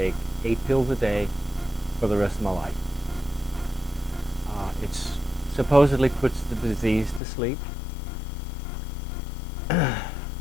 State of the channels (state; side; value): drops out; right; at 7.2 s